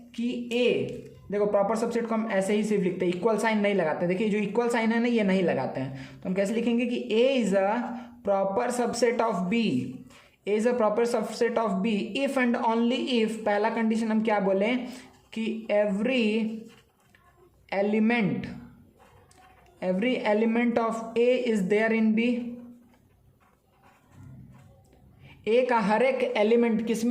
कि ए, देखो प्रॉपर सबसेट को हम ऐसे ही सिर्फ लिखते हैं, इक्वल साइन नहीं लगाते। देखिए जो इक्वल साइन है ना, ये नहीं लगाते हैं, तो हम कैसे लिखेंगे कि A is a proper subset of B, A is a proper subset of B if and only if, पहला कंडीशन हम क्या बोलें कि every element of A is there in B. A का हर एक एलिमेंट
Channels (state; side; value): identical; both; correlation 1.00